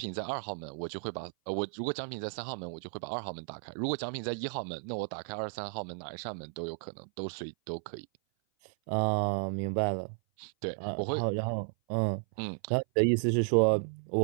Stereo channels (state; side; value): silent; left; 55 dB below the other